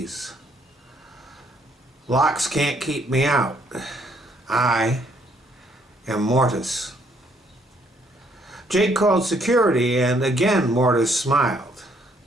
Locks can't keep me out. I am Mortis." Jake called security, and again Mortis smiled.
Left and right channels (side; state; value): both; normal; correlation 0.68